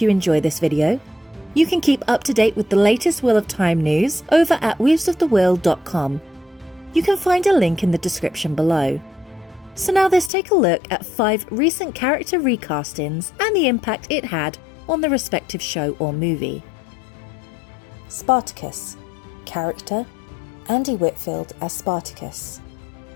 you enjoy this video. You can keep up to date with the latest Wheel of Time news over at weavesofthewill.com. You can find a link in the description below. So now let's take a look at 5 recent character recastings and the impact it had on the respective show or movie. Spartacus. Character: Andy Whitfield as Spartacus.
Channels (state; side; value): drops out; right; at 10.3 s